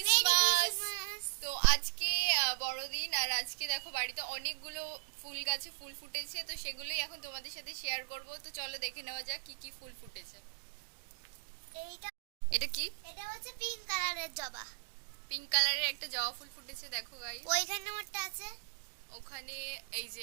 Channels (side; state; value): left; quieter; 36.8 dB